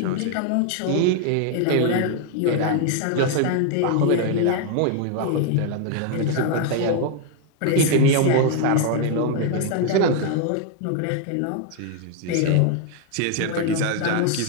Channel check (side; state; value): both; different; correlation 0.00